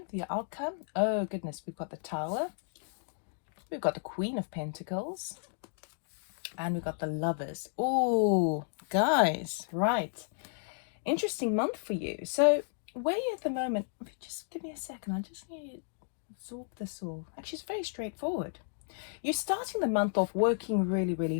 the outcome. Oh goodness, we've got the Tower, we've got the Queen of Pentacles, and we've got the Lovers. Oh, guys, right. Interesting month for you. So where you at the moment, just give me a second. I just need to absorb this all. Actually, it's very straightforward. You're starting the month off working really, really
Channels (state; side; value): silent; right; digital silence